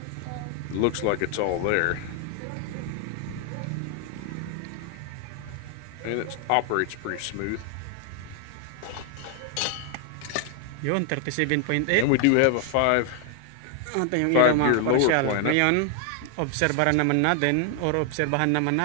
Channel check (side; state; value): both; different; correlation 0.00